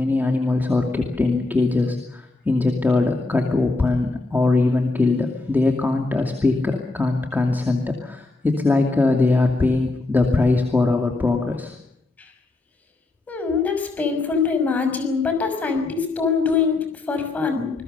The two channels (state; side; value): quieter; right; 3.2 dB